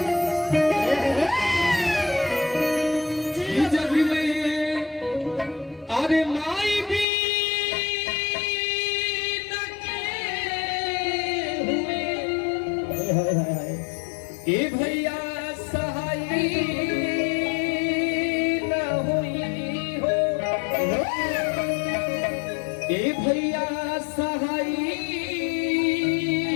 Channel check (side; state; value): right; drops out; at 7.1 s